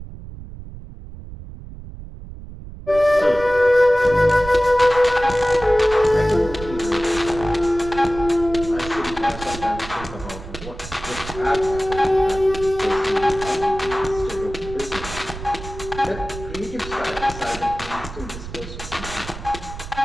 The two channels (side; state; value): right; noise; rumble, 12 dB below the sound